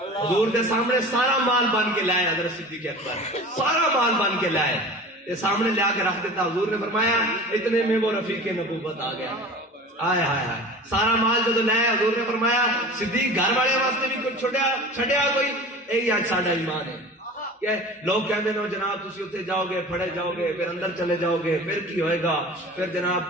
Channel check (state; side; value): normal; both; correlation 0.38